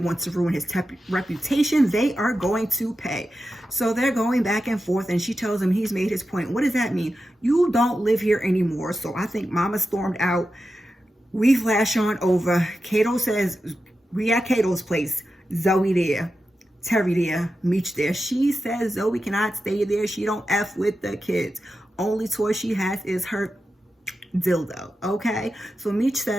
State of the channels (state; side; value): normal; both; correlation 0.91